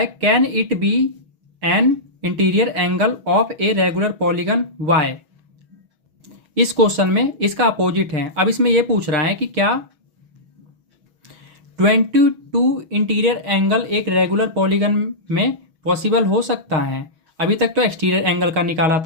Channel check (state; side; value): late; left; 6.2 ms